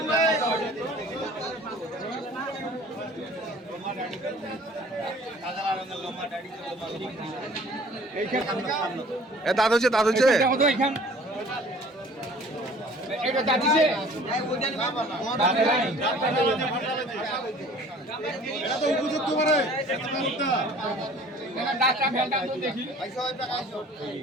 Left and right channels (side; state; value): both; normal; correlation 0.50